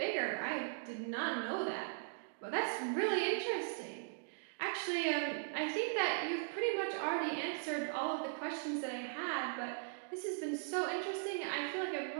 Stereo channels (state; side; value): silent; left; digital silence